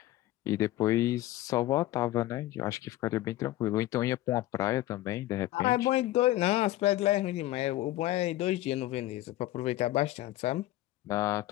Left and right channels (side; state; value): right; quieter; 15.8 dB